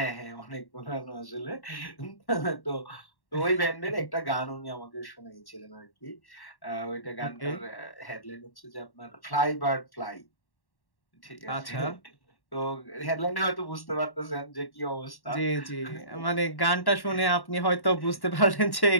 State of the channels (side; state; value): right; late; 1.1 ms